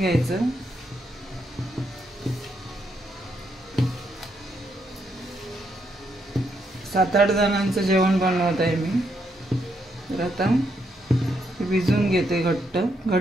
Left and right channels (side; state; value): both; normal; correlation 0.77